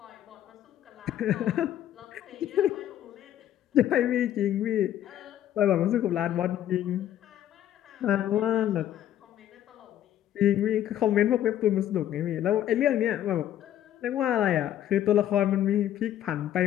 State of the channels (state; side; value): quieter; right; 11.5 dB